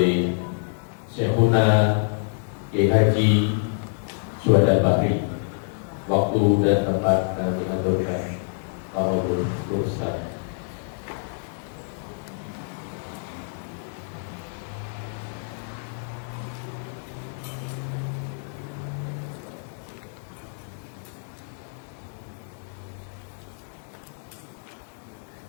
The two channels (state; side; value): silent; right; digital silence